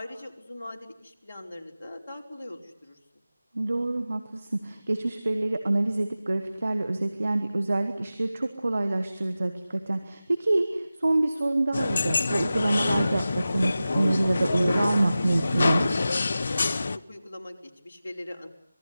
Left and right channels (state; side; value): inverted; both; correlation -0.95